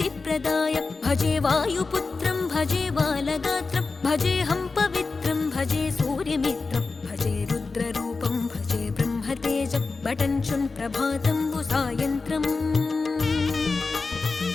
भजे वायुपुत्रं भजे बालगात्रं भजेऽहं पवित्रं भजे सूर्यमित्रं भजे रुद्ररूपं भजे ब्रह्मतेजं बटञ्चुं प्रभातं सायन्त्रम्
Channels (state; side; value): quieter; right; 4.1 dB